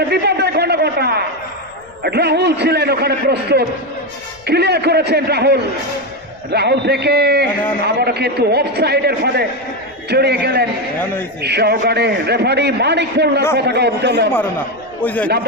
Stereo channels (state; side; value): noise; left; rumble, 29 dB below the sound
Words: বিপদের ঘটা রাহুল ছিলেন ওখানে প্রস্তুত, ক্লিয়ার করেছেন রাহুল থেকে আবারও কিন্তু অফ সাইডের ফাঁদে জড়িয়ে গেলেন সহকারে রেফারি মানিক মোল্লার পতাকা উত্তোলন।